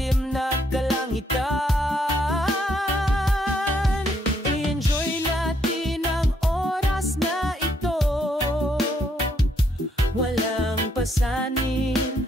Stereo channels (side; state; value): both; normal; correlation 0.72